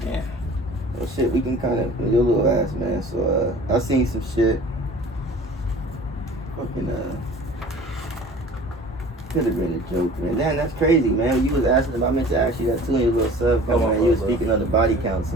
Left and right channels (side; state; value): both; normal; correlation 0.45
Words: damn. Well, shit, we can kind of, your little ass, man. So, I seen some shit. Fucking, could have been a joke, man. Damn, that's crazy, man. You was asking about, I meant to ask you that too in your little sub Come on, man. You was bro. speaking of the body counts